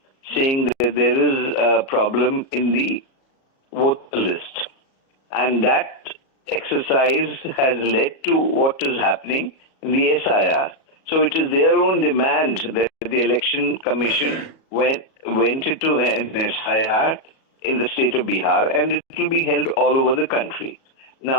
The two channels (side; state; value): right; late; 37 ms